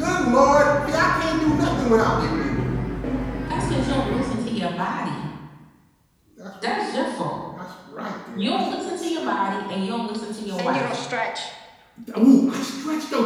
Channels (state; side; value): identical; both; correlation 1.00